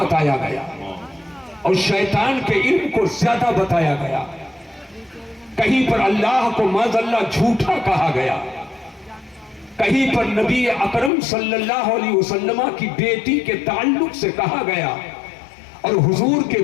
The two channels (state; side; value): drops out; right; at 11.1 s